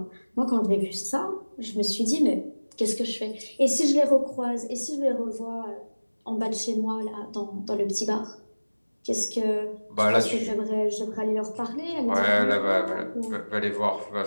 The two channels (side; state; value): both; inverted; correlation -1.00